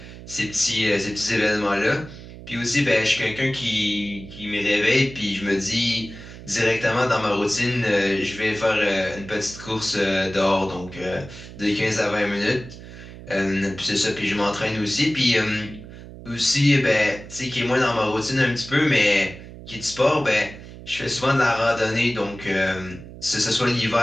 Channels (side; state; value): right; noise; hum, 15 dB below the sound